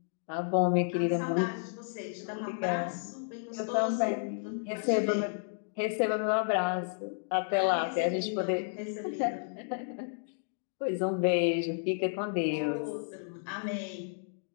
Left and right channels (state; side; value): silent; right; digital silence